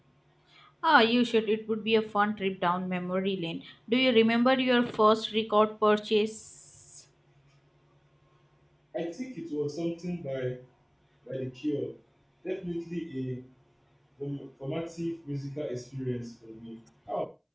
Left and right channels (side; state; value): both; identical; correlation 1.00